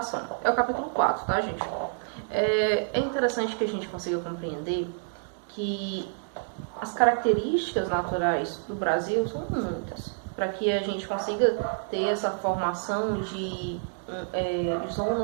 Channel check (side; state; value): left; silent; digital silence